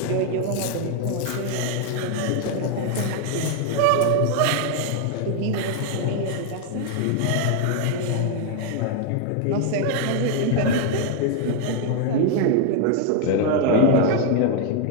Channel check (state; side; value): different; both; correlation 0.00